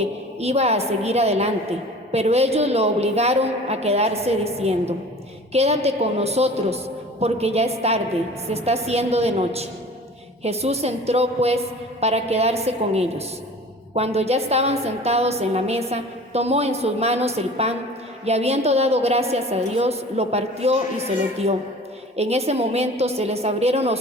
iba a seguir adelante, pero ellos lo obligaron a quedarse diciendo: «Quédate con nosotros, porque ya es tarde, se está haciendo de noche». Jesús entró pues para quedarse con ellos. Cuando ya estaban sentados en la mesa, tomó en sus manos el pan y, habiendo dado gracias a Dios, lo partió y se lo dio. En ese momento se les abrieron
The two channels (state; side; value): normal; both; correlation 0.42